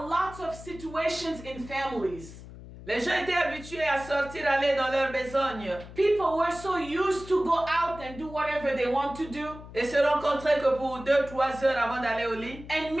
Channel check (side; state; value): left; noise; hum, 15 dB below the sound